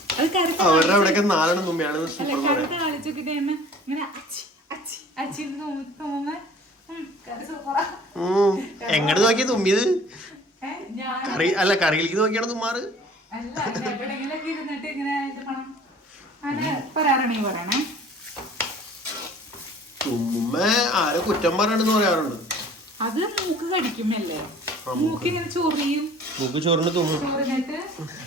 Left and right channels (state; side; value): normal; both; correlation 0.49